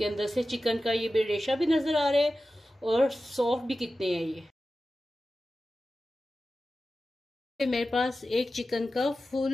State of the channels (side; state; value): both; normal; correlation 0.94